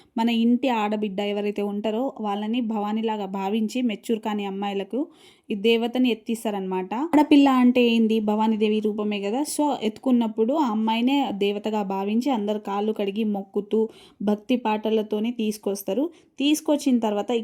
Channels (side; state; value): both; identical; correlation 1.00